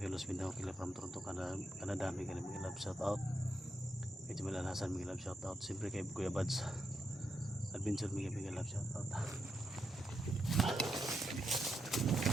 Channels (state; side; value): normal; both; correlation 0.83